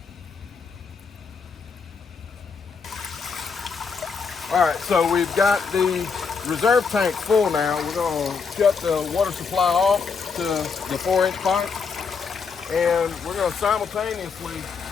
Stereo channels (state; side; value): quieter; right; 5.4 dB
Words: All right, so we've got the reserve tank full now. We're going to shut the water supply off to the 4-inch pipe, and we're going to simultaneously